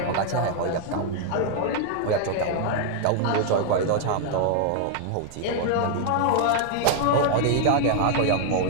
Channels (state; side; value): different; both; correlation 0.00